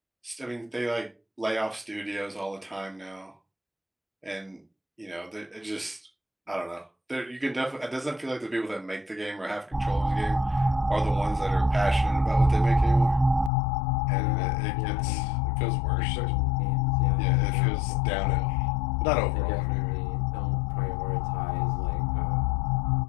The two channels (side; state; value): right; drops out; at 13.5 s